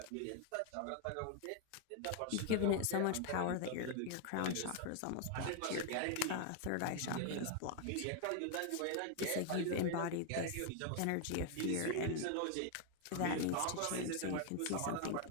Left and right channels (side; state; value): both; different; correlation 0.01